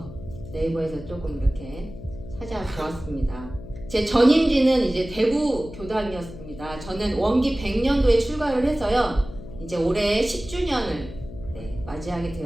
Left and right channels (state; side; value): noise; left; hum, 14 dB below the sound